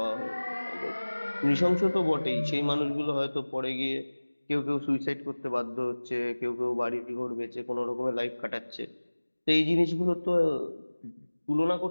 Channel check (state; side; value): inverted; both; correlation -1.00